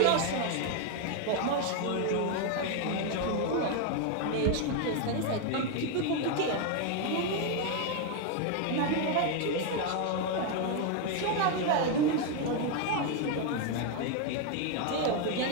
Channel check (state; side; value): different; both; correlation 0.01